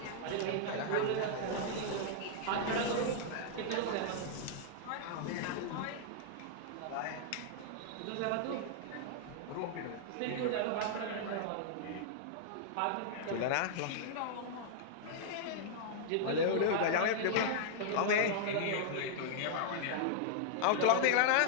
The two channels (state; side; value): different; both; correlation -0.01